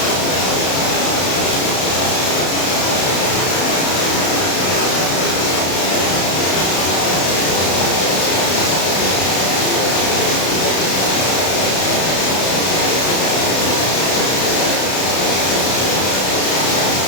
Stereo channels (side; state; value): right; late; 32 ms